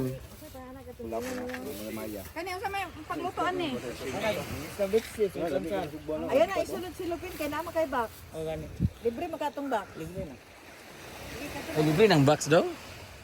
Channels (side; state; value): both; identical; correlation 1.00